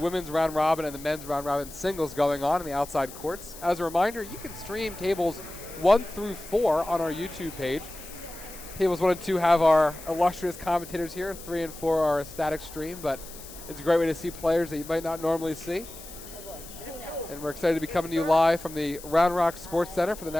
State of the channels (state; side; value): noise; left; hiss, 16 dB below the sound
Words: round robin and the men's round robin singles going on in the outside courts. As a reminder, you can stream tables 1 through 4 on our YouTube page. Tables 1 and 2 have our illustrious commentators here. 3 and 4 are a static stream, but it's a great way to see players that you might not normally see. And we're excited to be coming to you live from the Round Rock Sports Center for the